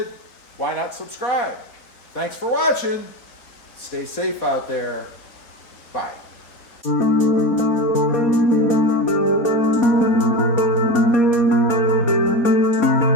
why not subscribe? Thanks for watching. Stay safe out there. Bye.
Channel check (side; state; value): right; late; 4.2 ms